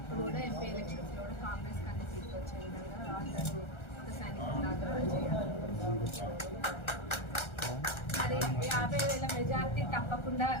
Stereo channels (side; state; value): right; late; 1.3 ms